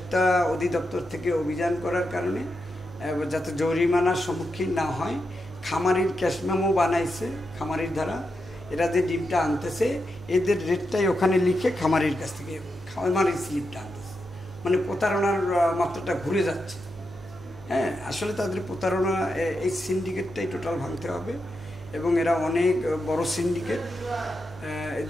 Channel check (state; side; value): noise; right; hum, 18 dB below the sound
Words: অধিদপ্তর থেকে অভিযান করার কারণে যাতে জরিমানার সম্মুখীন না হয়, খামারির ক্যাশ মেমো বানাইছে খামারির দ্বারা, এরা যে ডিমটা আনতেছে এদের রেটটাই ওখানে লিখে খামারির কাছ থেকে খামারির স্লিপটা আনতেছে, মানে প্রতারণার মাত্রাটা ঘুরে যাচ্ছে। হ্যাঁ, আসলে তাদের প্রতারণা, এই সিন্ডিকেটটাই টোটাল ভাঙতে হবে, এবং এরা অনেক বড় সিন্ডিকেট,